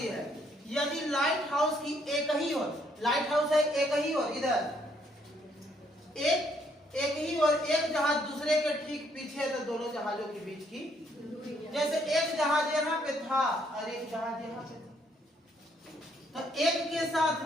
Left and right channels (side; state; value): both; normal; correlation 0.69